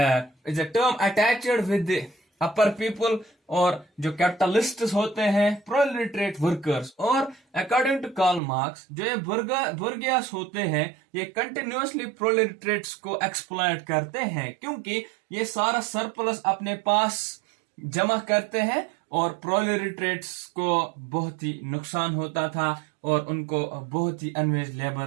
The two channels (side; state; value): left; drops out; at 8.4 s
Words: attached with upper people, और जो कैपिटलिस्ट होते हैं प्रोलेटरेट वर्कर्स। और अकॉर्डिंग टू कार्ल मार्क्स जो ये बुर्गियास होते हैं ये कंटिन्यूअसली प्रोलेटरेट्स को एक्सप्लॉइट करते हैं, क्योंकि ये सारा सरप्लस अपने पास जमा करते हैं और प्रोलेटरेट्स को बहुत ही नुकसान होता था और उनको बहुत ही अनवेज